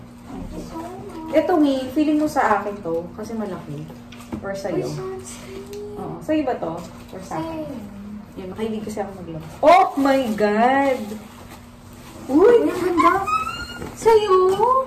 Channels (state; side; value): identical; both; correlation 1.00